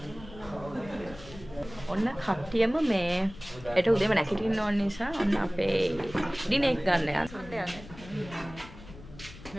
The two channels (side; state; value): left; noise; rumble, 17 dB below the sound